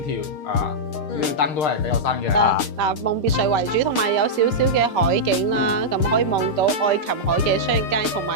啊，呢個燈都係比較新嘅嚇。嗱，望別墅為主，同埋有少少嘅海景啦，咁可以望到愛琴海嘅商業街同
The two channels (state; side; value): late; right; 6.5 ms